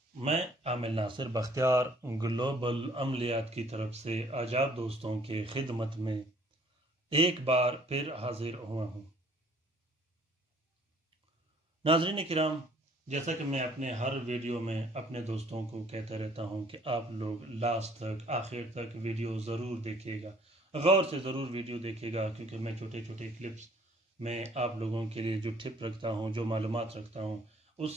मैं आमिर नासिर बख्तियार ग्लोबल अमलियात की तरफ से आजाद दोस्तों के खिदमत में एक बार फिर हाजिर हुआ हूँ। नाज़रीन किराम, जैसा कि मैं अपने हर वीडियो में अपने दोस्तों को कहता रहता हूँ कि आप लोग लास्ट तक आखिर तक वीडियो ज़रूर देखिएगा, गौर से ज़रूर वीडियो देखिएगा, क्योंकि मैं छोटे छोटे क्लिप्स में आप लोगों के लिए जो टिप रखता हूँ, जो मालूमात रखता हूँ,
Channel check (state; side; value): normal; both; correlation 0.57